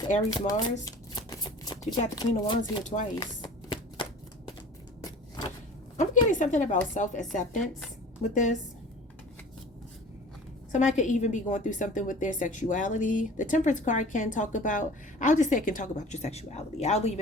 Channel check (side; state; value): both; normal; correlation 0.43